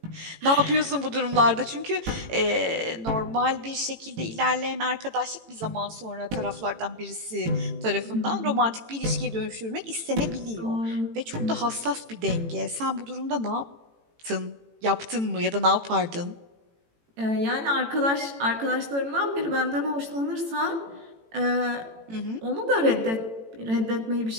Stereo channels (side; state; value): left; late; 18 ms